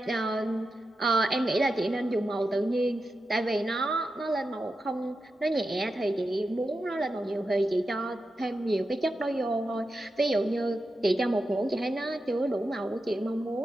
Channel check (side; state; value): both; normal; correlation 0.90